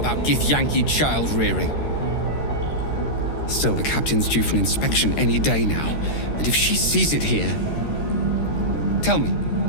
Githyanki child rearing? Still, the captain's due for an inspection any day now, and if she sees it here... Tell me,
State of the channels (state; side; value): late; right; 13 ms